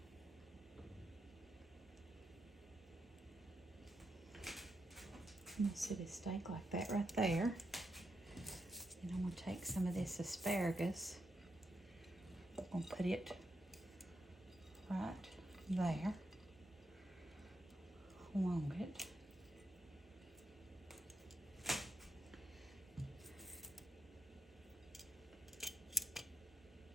I'm gonna set his steak like that right there. And I'm gonna take some of this asparagus. I'm gonna put it right there along it.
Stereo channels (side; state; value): both; normal; correlation 0.82